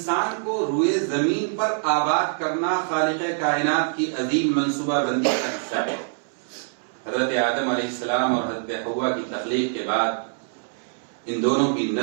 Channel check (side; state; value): left; silent; 62 dB below the other